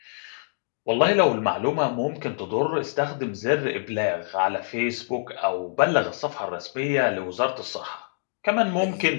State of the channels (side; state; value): right; silent; digital silence